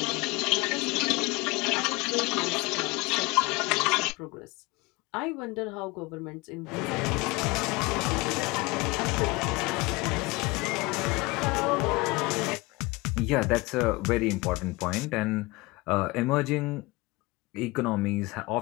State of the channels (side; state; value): right; quieter; 23.6 dB